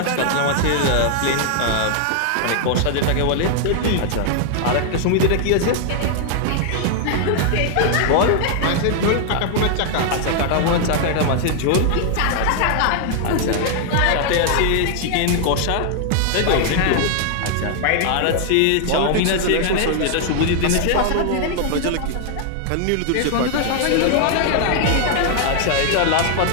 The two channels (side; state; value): both; different; correlation 0.00